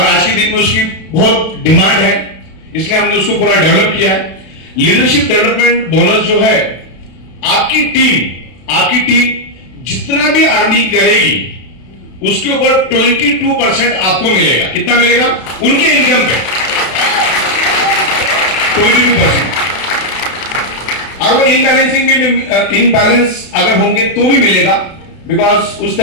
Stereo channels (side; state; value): right; late; 32 ms